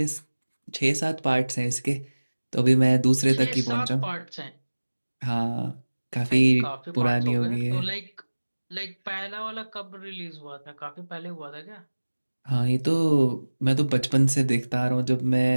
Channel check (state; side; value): inverted; both; correlation -1.00